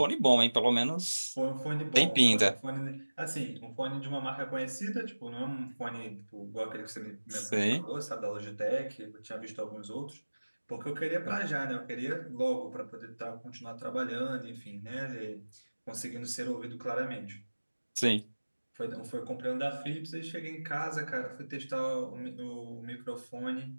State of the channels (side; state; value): both; inverted; correlation -1.00